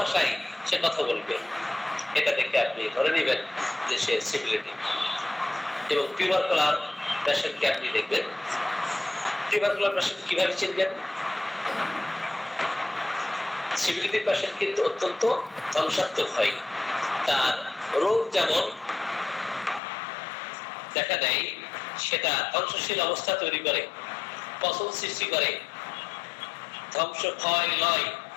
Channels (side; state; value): right; drops out; at 19.8 s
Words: সে কথা বলবে। এটা দেখে আপনি ধরে নেবেন যে সে সিভিলিটি। এবং টিউবারকুলার পেশেন্টকে আপনি দেখবেন, টিউবারকুলার পেশেন্ট কিভাবে চিনবেন? সিভিলিটি পেশেন্ট কিন্তু অত্যন্ত ধ্বংসাত্মক হয়। তার রোগ যেমন দেখা দেয়, সেটা ধ্বংসশীল অবস্থা তৈরি করে, পচন সৃষ্টি করে, ধ্বংস ক্ষয় লয়